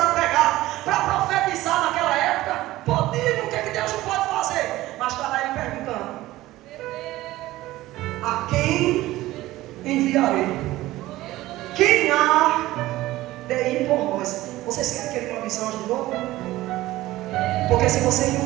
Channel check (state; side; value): quieter; left; 16.9 dB